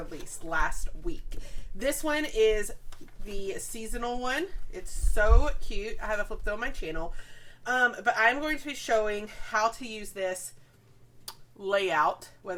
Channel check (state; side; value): identical; both; correlation 1.00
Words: last week. This one is the seasonal one. It's so cute. I have it flipped on my channel. But I'm going to be showing how to use this layout,